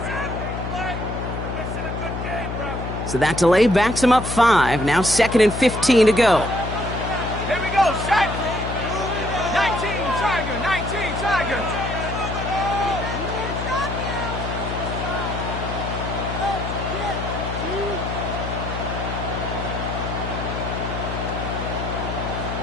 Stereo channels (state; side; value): noise; left; hum, 5 dB below the sound